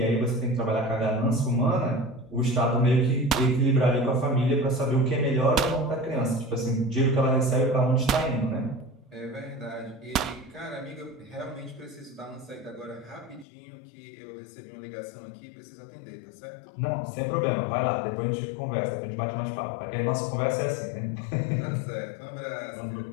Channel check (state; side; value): drops out; right; at 13.5 s